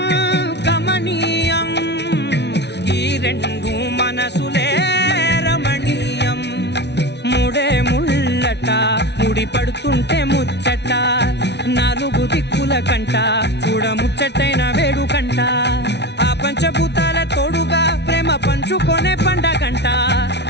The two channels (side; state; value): right; late; 0.50 ms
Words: గమనీయం ఈ రెండు మనసులే రమణీయం ముడే ముళ్ళట ముడి పడుతుంటే ముచ్చట నాలుగు దిక్కుల కంట చూడ ముచ్చటైన వేడుకంట ఆ పంచభూతాల తోడుగా ప్రేమ పంచుకొనే పండగంట